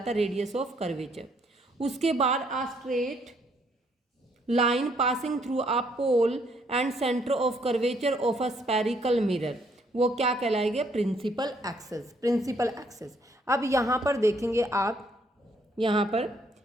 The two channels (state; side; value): normal; both; correlation 0.68